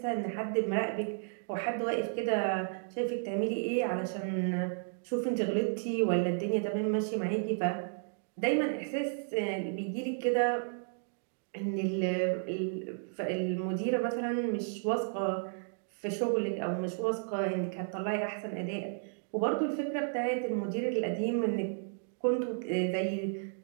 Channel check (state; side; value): silent; left; digital silence